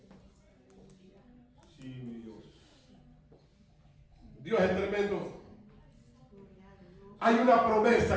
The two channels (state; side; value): identical; both; correlation 1.00